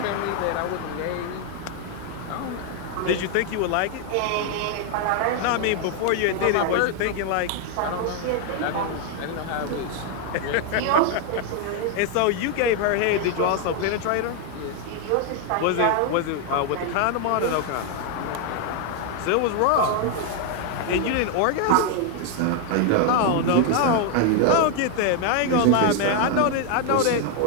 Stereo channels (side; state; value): both; different; correlation 0.00